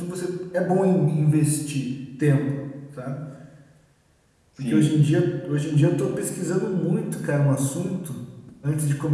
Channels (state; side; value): identical; both; correlation 1.00